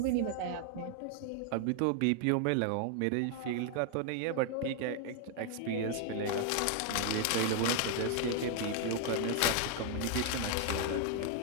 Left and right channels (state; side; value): different; both; correlation 0.00